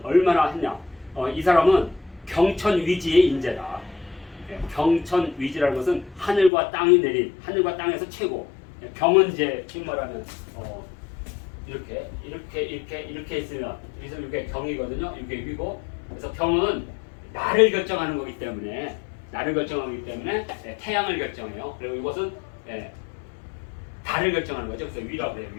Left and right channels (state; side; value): drops out; right; at 6.5 s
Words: 얼마나 했냐. 이 사람은 경천위지의 인재다. 경천위지라는 것은 하늘과 땅이 내린 하늘과 땅에서 최고. 경은 이제 지금 말하면 이렇게 있으면 그래서 이게 경이거든요. 이게 위고. 그래서 경은 나를 결정하는 거기 때문에 태양을 결정해요. 그리고 이것은 달을 결정하는 거죠. 그래서 위라고 해요.